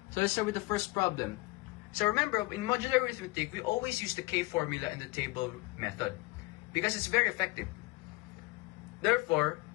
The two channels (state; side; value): quieter; right; 23.3 dB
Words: So let's start with the first problem. So remember, in modular arithmetic, we always use the K formula and the table method because it's very effective. Therefore,